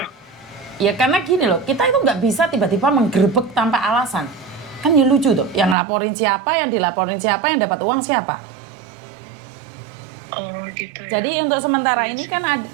Ya karena gini loh, kita itu nggak bisa tiba-tiba menggerebek tanpa alasan. Kan ya lucu tuh, yang laporin siapa, yang dilaporin siapa, yang dapat uang siapa. Oh gitu ya. Jadi untuk sementara ini kan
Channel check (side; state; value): left; drops out; at 5.8 s